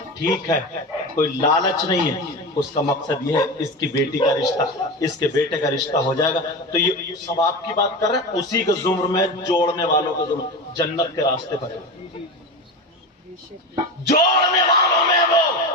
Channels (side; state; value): both; normal; correlation 0.24